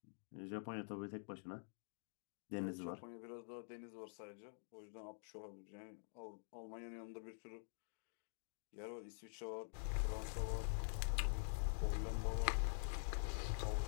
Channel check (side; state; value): right; silent; digital silence